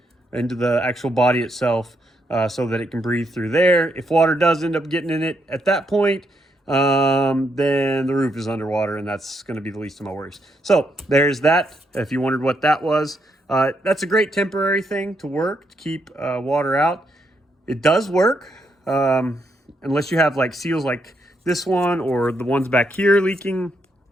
into the actual body itself, so that it can breathe through there. If water does end up getting in it at that point, then the roof is underwater, and that's going to be the least of my worries. So there's that. If you wondered what that was, that's a great temporary thing to work to keep water out. It does work, unless you have like seals like this one or the ones back here leaking,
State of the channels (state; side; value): normal; both; correlation 0.78